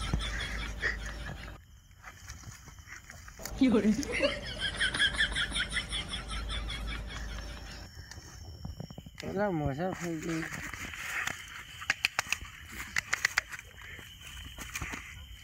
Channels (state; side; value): identical; both; correlation 1.00